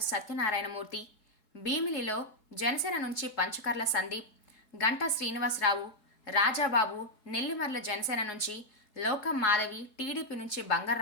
సత్యనారాయణమూర్తి, భీమిలిలో జనసేన నుంచి పంచకర్ల సందీప్, గంటా శ్రీనివాసరావు, రాజాబాబు, నెల్లిమర్ల జనసేన నుంచి లోకం మాధవి, టీడీపీ నుంచి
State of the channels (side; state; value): right; late; 4.7 ms